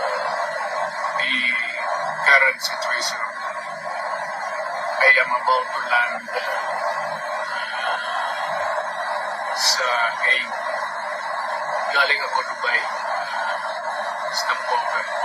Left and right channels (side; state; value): both; identical; correlation 1.00